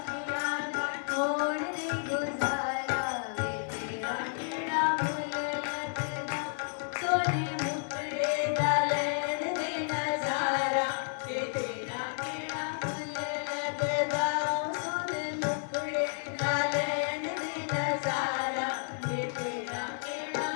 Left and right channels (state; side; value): silent; right; digital silence